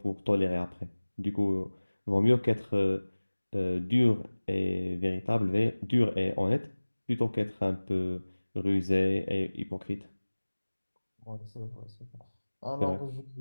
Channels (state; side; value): inverted; both; correlation -1.00